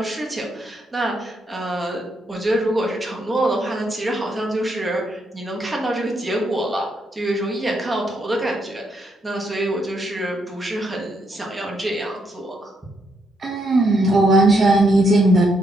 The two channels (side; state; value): both; normal; correlation 0.77